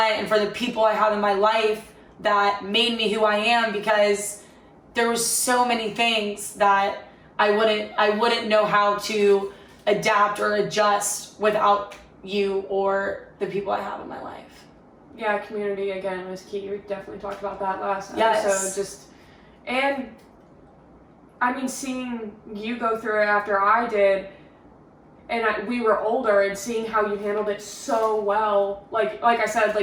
and for the people I have in my life that made me who I am, because there was so many things that I wouldn't know how to adapt or adjust without you or the people I have in my life. Yeah, community again was key. We definitely talked about that last Yes. episode. And I mean, seeing you go through it after I did, and we were older, and seeing how you handled it so well. Like I said,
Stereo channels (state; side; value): identical; both; correlation 1.00